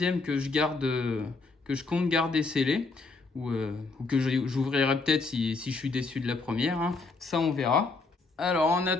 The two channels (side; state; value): right; quieter; 3.8 dB